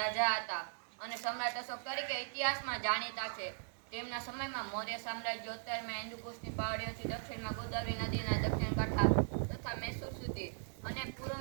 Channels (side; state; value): left; silent; digital silence